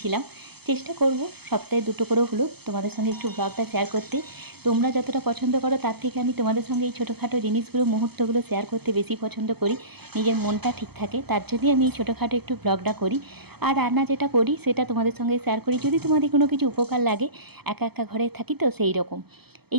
চেষ্টা করব সপ্তাহে 2টো করেও হলো তোমাদের সঙ্গে একটু ব্লগটা শেয়ার করতে। তোমরা যতটা পছন্দ করো তার থেকে আমি তোমাদের সঙ্গে এই ছোটোখাটো জিনিসগুলো, মুহূর্তগুলো শেয়ার করতে বেশি পছন্দ করি। নিজের মনটা ঠিক থাকে, তার জন্যই আমি এই ছোটোখাটো একটু ব্লগটা করি। আর রান্না যেটা করি সেটা তোমাদের সঙ্গে শেয়ার করি, যদি তোমাদের কোনো কিছু উপকার লাগে। একা একা ঘরে থাকি তো সেই রকম। এই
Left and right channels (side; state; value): left; late; 0.97 ms